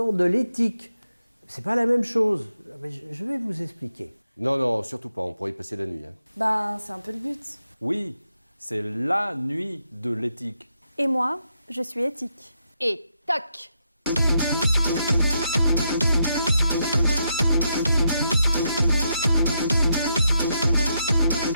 de l'éthique. C'est pas la même chose. Mais je vais vous expliquer. Non, surtout pas, on pourrait y passer la nuit. Ben, c'est un peu le but. Oui, c'est la nuit de l'éthique. Et moi, je suis éthique. Et toc!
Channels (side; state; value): both; inverted; correlation -0.81